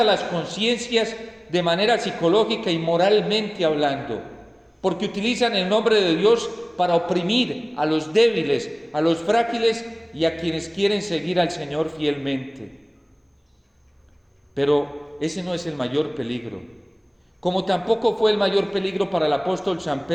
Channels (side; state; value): both; identical; correlation 1.00